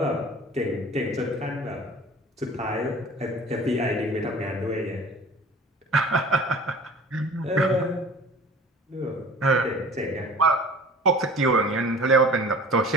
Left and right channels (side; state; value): both; normal; correlation 0.44